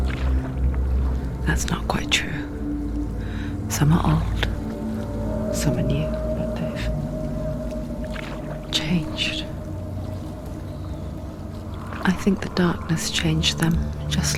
that's not quite true. Some are old, some are new, but they've changed. I think the darkness changed them,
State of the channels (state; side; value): identical; both; correlation 1.00